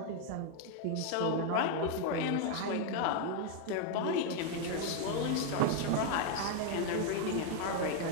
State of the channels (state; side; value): different; both; correlation 0.01